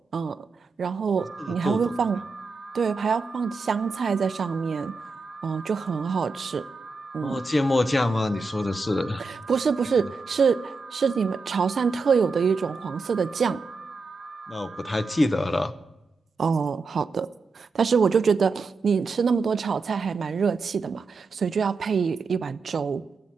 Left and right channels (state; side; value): quieter; left; 3.9 dB